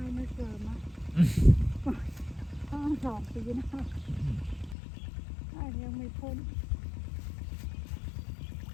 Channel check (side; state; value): right; drops out; at 4.8 s